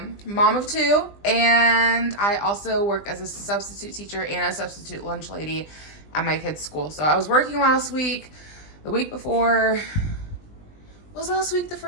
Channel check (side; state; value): right; late; 20 ms